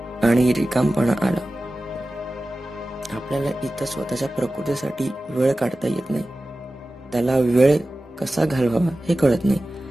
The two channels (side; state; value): both; normal; correlation 0.95